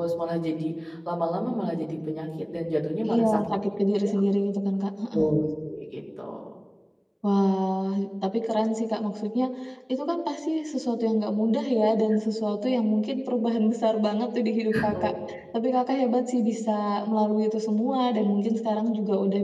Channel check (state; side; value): identical; both; correlation 1.00